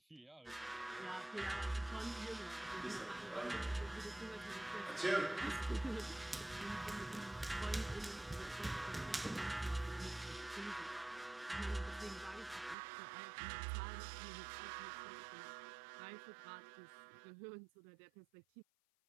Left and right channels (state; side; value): drops out; left; at 12.8 s